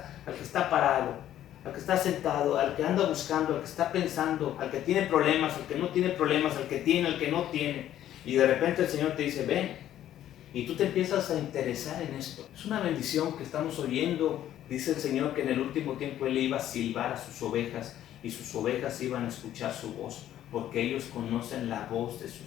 al que está parado, al que está sentado, al que anda buscando, al que está pensando, al que tiene problemas, al que no tiene problemas, al que tiene, al que no tiene. Y de repente el Señor te dice, ven. Y tú te empiezas a interesar en esto. Es una bendición que estamos oyendo. Dice el Señor que en el último tiempo Él iba a silbar a sus ovejas y sus ovejas iban a escuchar su voz, porque ellos conocen la voz de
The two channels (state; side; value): quieter; right; 11.9 dB